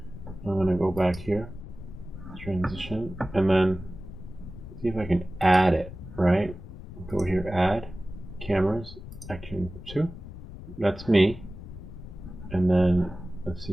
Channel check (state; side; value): noise; left; rumble, 13 dB below the sound